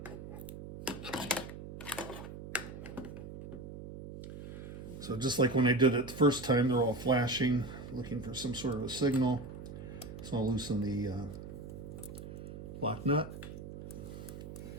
So just like when I did it the first time, they're all flashing, looking for some sort of a signal. So I'll loosen the lock nut,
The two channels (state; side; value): noise; right; hum, 11 dB below the sound